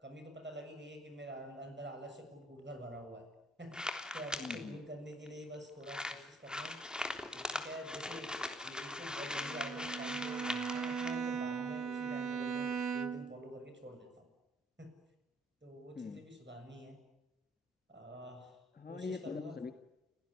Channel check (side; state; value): both; normal; correlation 0.63